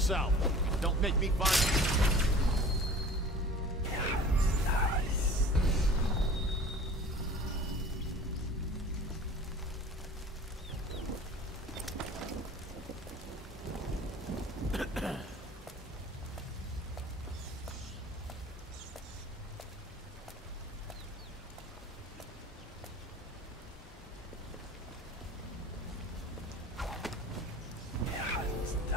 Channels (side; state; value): both; normal; correlation 0.43